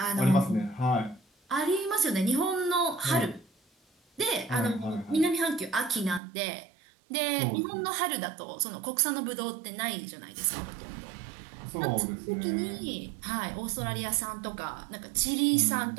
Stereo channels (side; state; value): left; drops out; at 6.2 s